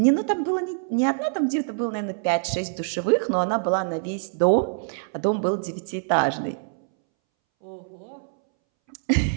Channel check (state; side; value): silent; left; 62 dB below the other